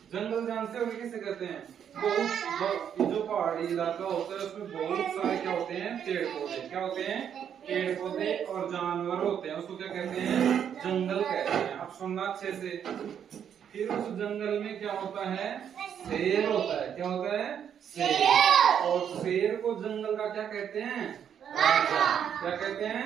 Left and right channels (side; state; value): left; quieter; 8.6 dB